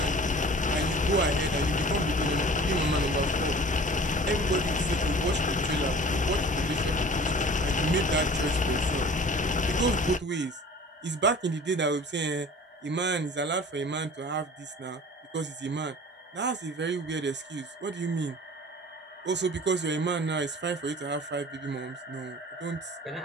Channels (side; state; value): both; normal; correlation 0.44